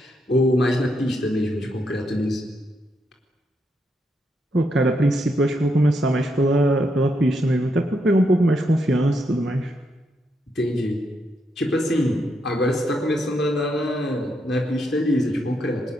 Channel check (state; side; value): normal; both; correlation 0.79